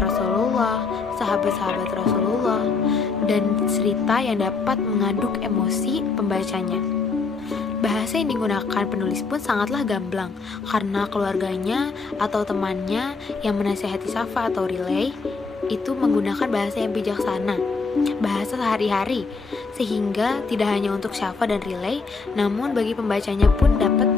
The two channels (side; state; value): right; quieter; 4.5 dB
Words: sahabat-sahabat Rasulullah, dan cerita yang dapat mengaduk emosi pembacanya. Bahasa yang digunakan penulis pun sangatlah gamblang, karena keluarganya atau temannya yang menasihati Shafa atau Riley itu menggunakan bahasa yang bijaksana, bahasa sehari-hari, sehingga tidak hanya untuk Shafa dan Riley, namun bagi pembacanya pun dapat